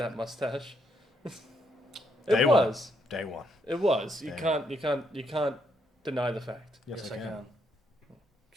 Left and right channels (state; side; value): normal; both; correlation 0.75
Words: mustache. Day It one. was. Day one. It was. You Damn. can't deny the fact. Yes, I can.